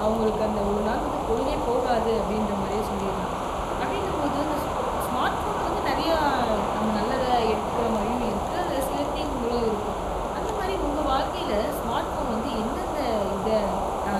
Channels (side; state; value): both; identical; correlation 1.00